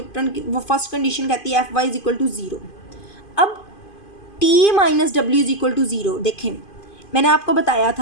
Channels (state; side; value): late; right; 2.5 ms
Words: की वो फर्स्ट कंडीशन कहती है F Y is equal to 0। अब T minus W is equal to 0। देखें मैंने आपको बताया